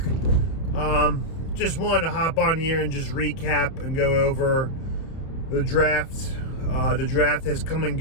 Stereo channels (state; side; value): late; right; 30 ms